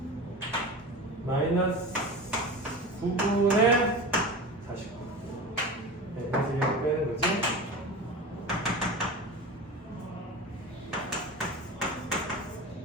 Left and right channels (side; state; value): both; normal; correlation 0.30